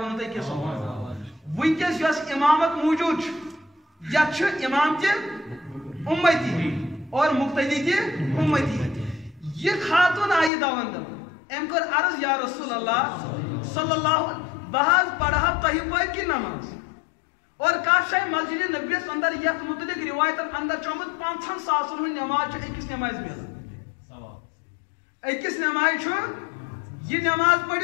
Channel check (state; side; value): drops out; right; at 10.5 s